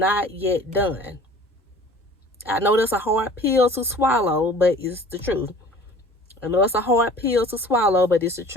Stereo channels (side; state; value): both; normal; correlation 0.47